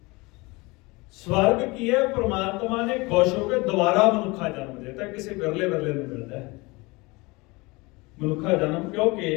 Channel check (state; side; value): quieter; right; 24.7 dB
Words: स्वर्ग ਕੀ ਹੈ? ਪ੍ਰਮਾਤਮਾ ਨੇ ਖੁਸ਼ ਹੋ ਕੇ ਦੁਬਾਰਾ ਮਨੁੱਖਾ ਜਨਮ ਦਿੱਤਾ। ਕਿਸੇ ਵਿਰਲੇ ਵਿਰਲੇ ਨੂੰ ਮਿਲਦਾ ਹੈ ਮਨੁੱਖਾ ਜਨਮ,